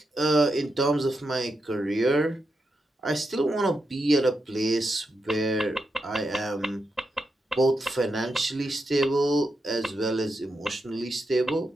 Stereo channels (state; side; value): normal; both; correlation 0.86